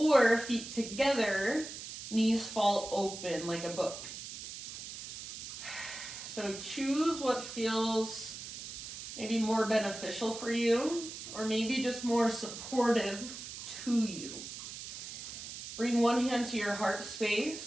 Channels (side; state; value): right; noise; hiss, 10 dB below the sound